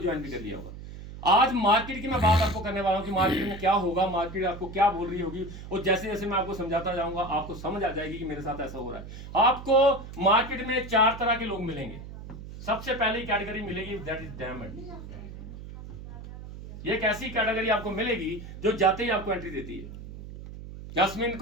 भी कर लिया होगा। आज मार्केट की मैं बात आपको करने वाला हूं कि मार्केट में क्या होगा, मार्केट आपको क्या बोल रही होगी, और जैसे जैसे मैं आपको समझाता जाऊंगा आपको समझ आ जाएगी कि मेरे साथ ऐसा हो रहा है। आपको मार्केट में 4 तरह के लोग मिलेंगे। सबसे पहली कैटेगरी मिलेगी दैट इज डायमंड। ये एक ऐसी कैटेगरी आपको मिलेगी जो जाते ही आपको एंट्री देती है। जास्मीन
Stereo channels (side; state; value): right; noise; hum, 12 dB below the sound